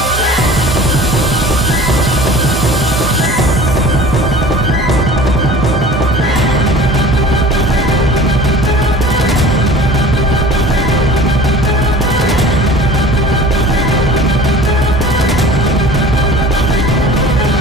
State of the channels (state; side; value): normal; both; correlation 0.42